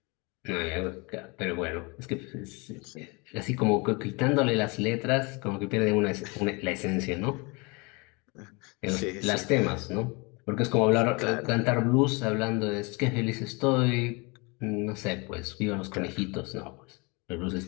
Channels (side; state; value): right; quieter; 28.5 dB